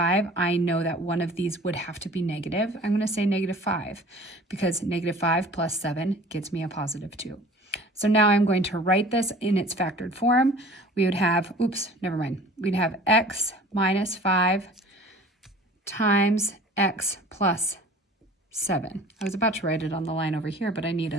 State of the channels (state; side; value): normal; both; correlation 0.46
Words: I know that one of these would have to be negative. I'm going to say -5, because -5 plus 7 gets me a positive 2. So now I'm going to write this in its factored form. We would have, we'd have x minus 5 times x plus 7. I was about to write it on the line over here, but I need